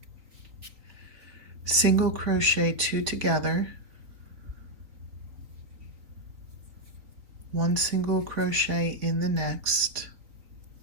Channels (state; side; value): late; left; 3.6 ms